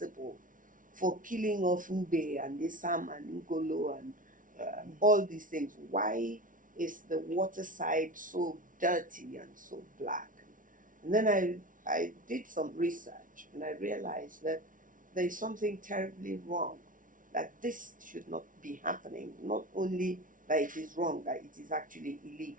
for killing of Mbe and Isam and Ngolo and all these things? Why is the water side so dirty and so black? And then I did some research, and I realized that there is something terribly wrong, that this should not be happening. Not only that it is wrong, that it is actually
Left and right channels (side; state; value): left; late; 0.38 ms